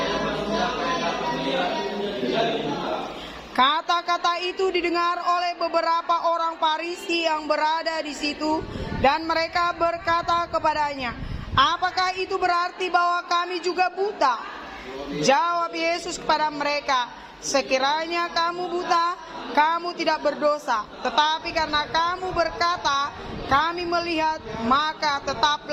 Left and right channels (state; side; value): identical; both; correlation 1.00